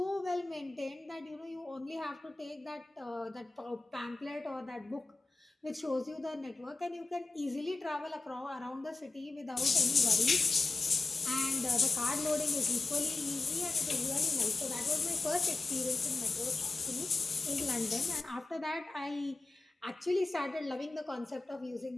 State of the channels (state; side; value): quieter; right; 3.6 dB